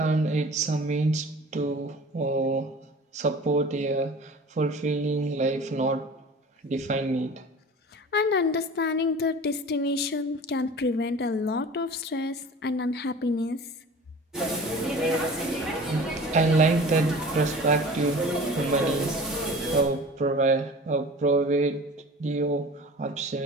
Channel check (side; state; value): both; normal; correlation 0.40